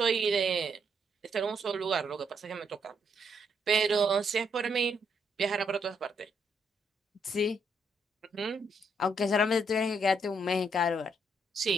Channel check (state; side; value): normal; both; correlation 0.75